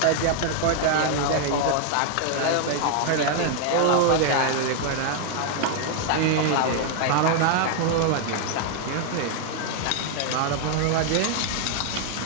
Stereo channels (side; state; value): both; different; correlation 0.00